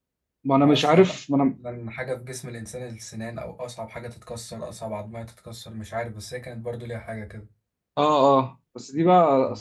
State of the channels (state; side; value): identical; both; correlation 1.00